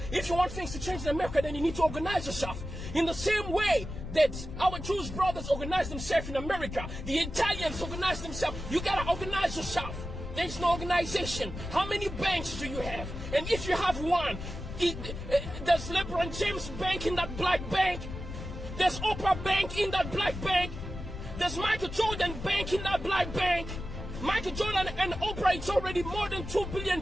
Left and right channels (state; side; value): noise; left; rumble, 8 dB below the sound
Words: want things to change in America, then you need to organize yourself. In the same way that our Jewish brothers organize themselves in America, the Italians organize themselves. You gotta organize yourself. There's no organization. How many banks do you have? And if you have one, there's LeBron James Bank in that black bank. There's Oprah Bank in that black bank. There's Michael Jordan Bank in that black bank. Michael Jordan and Oprah, it's already more than $2 billion